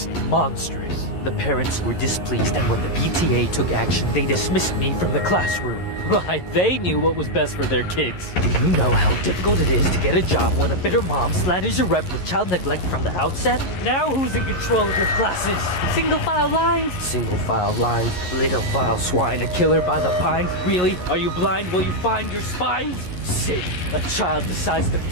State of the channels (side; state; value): right; late; 11 ms